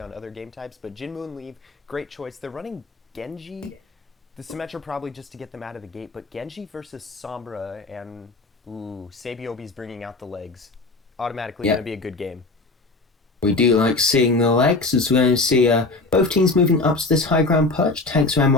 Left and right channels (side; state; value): right; quieter; 3.4 dB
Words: on other game types. But Jinmu and Leave, great choice. They're running Genji. The Symmetra probably just to get them out of the gate, but Genji versus Sombra and Sabiobi's bringing out the legs. Automatically going Yeah, to be a good game. we do like seeing the legs, as we're going to see both teams moving up to this high ground perch, thanks to